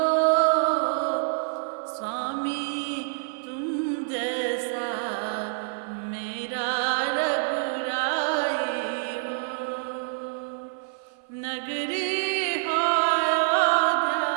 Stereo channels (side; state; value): left; silent; 56 dB below the other